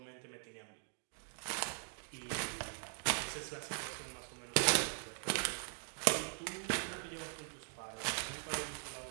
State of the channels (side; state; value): left; silent; 50 dB below the other